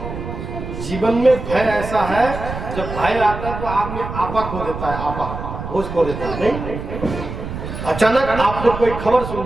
जीवन में भय ऐसा है, जब भय आता है तो आदमी आपा खो देता है, आपा होश खो देता है। नहीं, अचानक आपको कोई खबर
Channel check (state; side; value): noise; right; rumble, 7 dB below the sound